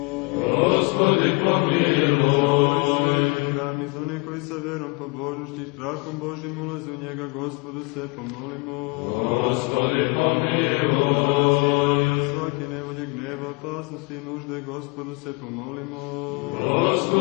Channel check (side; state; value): right; quieter; 27.7 dB